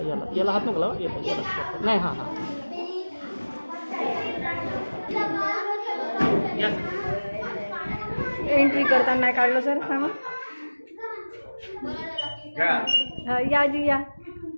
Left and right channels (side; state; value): both; inverted; correlation -1.00